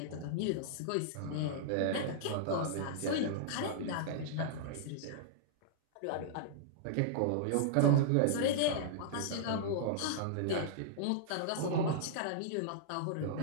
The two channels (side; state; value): both; different; correlation -0.02